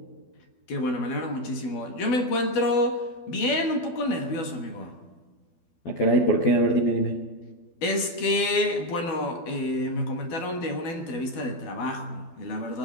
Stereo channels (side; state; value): right; late; 12 ms